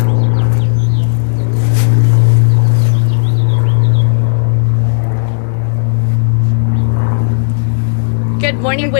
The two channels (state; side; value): silent; right; digital silence